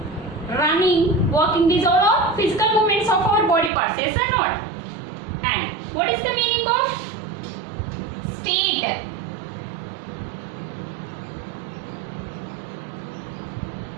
running, walking. These are all physical movements of our body parts. Yes or not? And what is the meaning of state?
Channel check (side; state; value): left; drops out; at 3.7 s